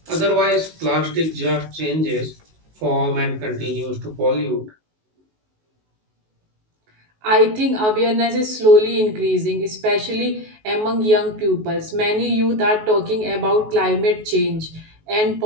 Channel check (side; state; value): left; late; 19 ms